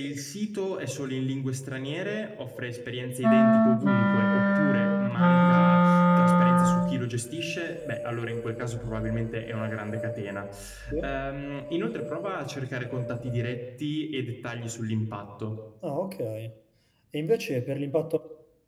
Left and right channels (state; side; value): identical; both; correlation 1.00